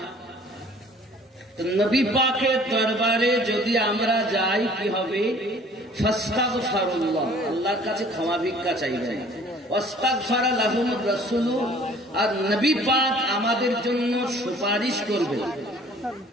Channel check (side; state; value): both; normal; correlation 0.53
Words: তো নবী পাকের দরবারে যদি আমরা যাই, কি হবে? ফাস্তাগফিরুল্লাহ, আল্লাহর কাছে ক্ষমা ভিক্ষা চাইবেন। ওয়াস্তাগফারা লাহুমুর রাসূল, আর নবী পাক আমাদের জন্য সুপারিশ করবেন।